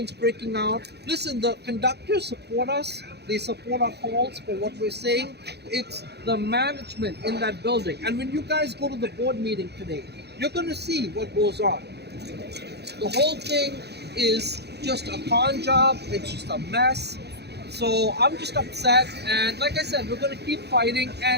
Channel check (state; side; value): late; left; 0.48 ms